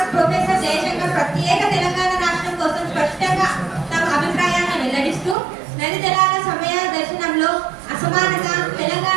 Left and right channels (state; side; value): drops out; left; at 5.4 s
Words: ప్రొఫెసర్ జయశంకర్ ప్రత్యేక తెలంగాణ రాష్ట్రం కోసం స్పష్టంగా తమ అభిప్రాయాన్ని వెల్లడిస్తూ నది జలాల సమయ దర్శనంలో అసమానత